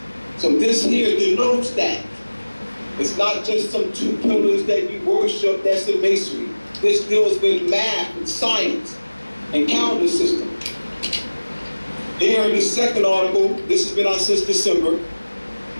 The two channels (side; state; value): both; inverted; correlation -1.00